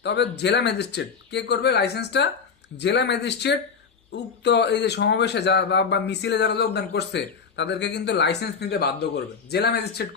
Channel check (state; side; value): quieter; right; 5.8 dB